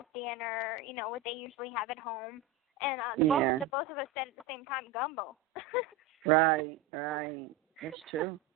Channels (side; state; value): left; quieter; 4.8 dB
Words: dinner, what they usually have at home, and both of us said at the same time, gumbo. Right, that's true.